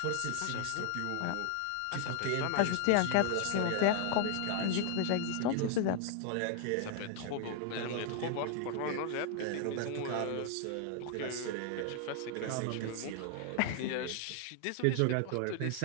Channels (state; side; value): different; both; correlation 0.00